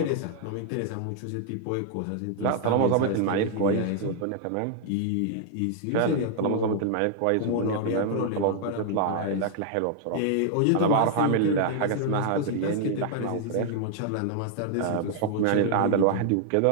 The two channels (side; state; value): both; different; correlation 0.00